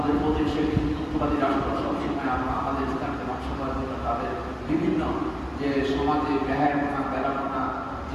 প্রতিবেশী হিন্দুত্ববাদী রাষ্ট্র, সবসময় আমরা আমাদের ইসলামকে ধ্বংস করার জন্য তাদের বিভিন্ন যে সমাজে ব্যয়াপনা বেড়াপনা,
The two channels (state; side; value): identical; both; correlation 1.00